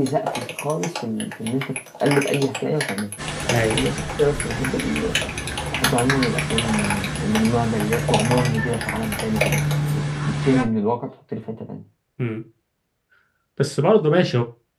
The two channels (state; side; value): identical; both; correlation 1.00